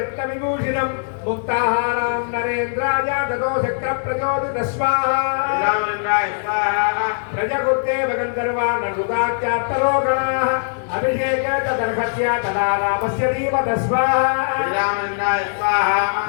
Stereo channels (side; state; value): right; silent; digital silence